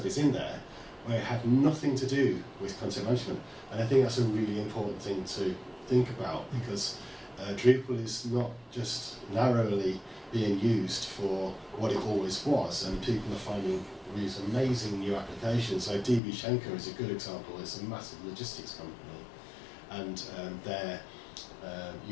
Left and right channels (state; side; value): drops out; right; at 16.2 s